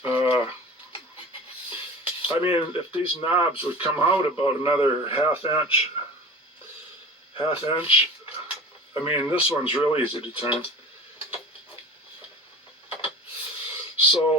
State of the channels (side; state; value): both; normal; correlation 0.37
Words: I mean, if these knobs would come out about another half inch, I mean, this one's real easy to turn.